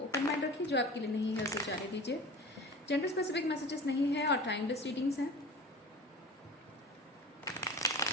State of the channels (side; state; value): both; normal; correlation 0.36